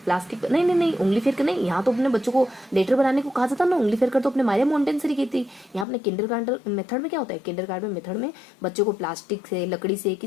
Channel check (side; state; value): right; drops out; at 5.9 s